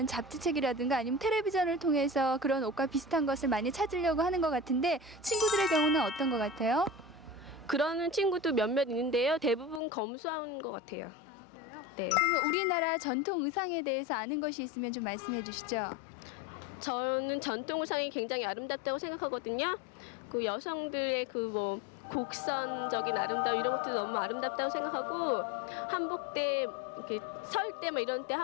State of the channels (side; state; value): right; drops out; at 9.8 s